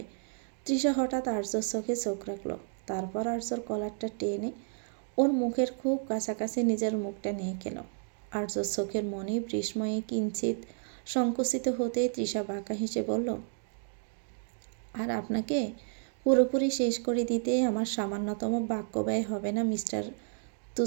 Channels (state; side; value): silent; left; 56 dB below the other